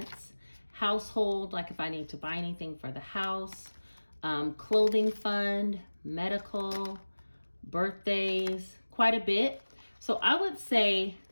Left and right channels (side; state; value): both; inverted; correlation -1.00